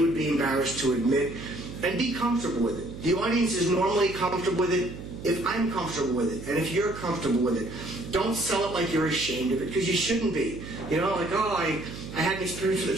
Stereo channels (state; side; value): noise; right; hum, 11 dB below the sound